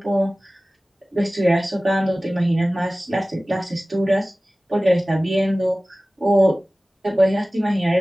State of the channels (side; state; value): both; normal; correlation 0.97